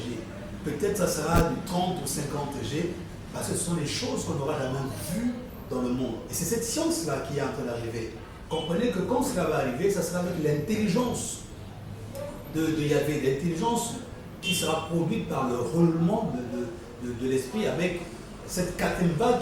Peut-être ça sera du 30 ou 50G, Parce que ce sont des choses qu'on n'aura jamais vues dans le monde. Et c'est cette science-là qui est en train d'arriver. Comprenez que quand cela va arriver, ça sera avec l'intelligence de Yahvé, l'intelligence qui sera produite par le roulement de l'esprit avec cette quatrième vague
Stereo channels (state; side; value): identical; both; correlation 1.00